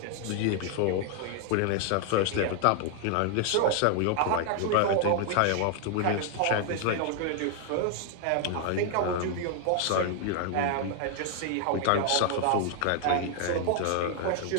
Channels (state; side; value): different; both; correlation 0.00